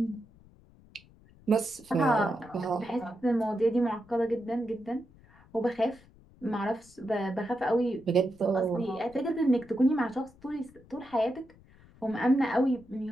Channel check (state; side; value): noise; left; rumble, 26 dB below the sound